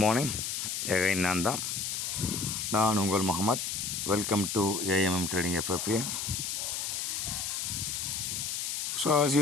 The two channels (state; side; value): noise; left; hiss, 2 dB below the sound